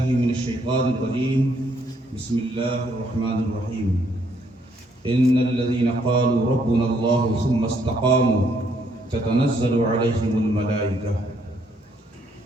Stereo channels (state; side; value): normal; both; correlation 0.70